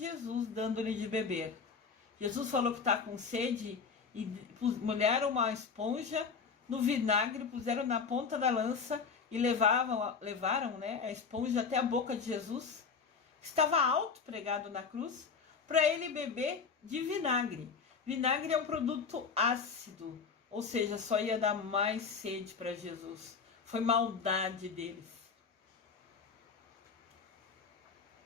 dando-lhe de beber. Jesus falou que está com sede e molharam uma esponja no vinagre, puseram na ponta da lança e levaram, né, a esponja até a boca de Jesus, que estava alto, pregado na cruz, para ele beber de vinagre. Vinagre é um produto ácido, ou seja, só ia dar mais sede para Jesus. Foi maldade deles.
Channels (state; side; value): quieter; right; 5.5 dB